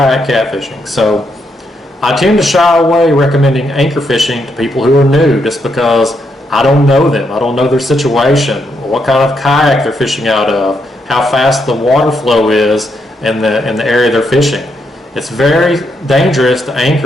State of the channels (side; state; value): both; normal; correlation 0.79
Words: catfishing. So I tend to shy away recommending anchor fishing to people who are new just because I don't know them. I don't know their situation, what kind of kayak they're fishing out of, how fast the water flow is in the area they're fishing. It's very dangerous to